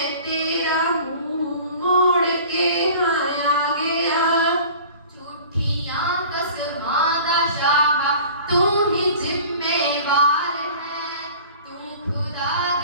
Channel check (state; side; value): inverted; both; correlation -0.44